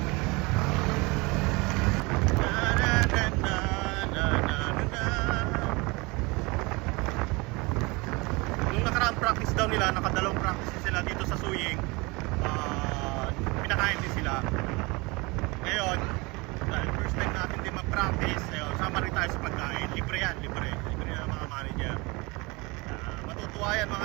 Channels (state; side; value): quieter; left; 25.7 dB